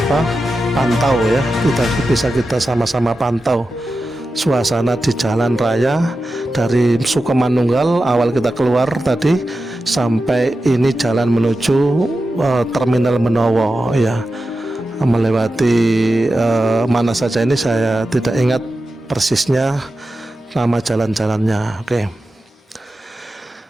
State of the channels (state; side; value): normal; both; correlation 0.92